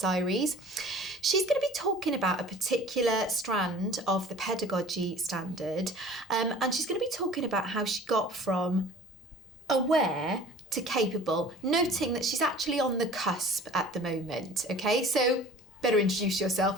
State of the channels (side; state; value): both; normal; correlation 0.45